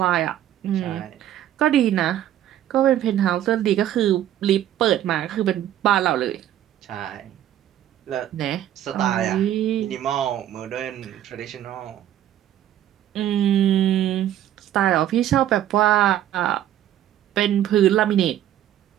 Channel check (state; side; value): quieter; left; 11.8 dB